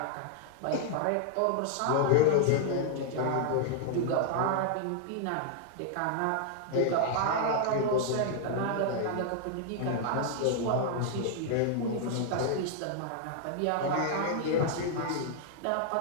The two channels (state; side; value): different; both; correlation -0.01